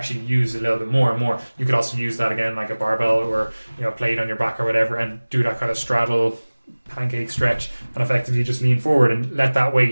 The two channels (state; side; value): inverted; both; correlation -1.00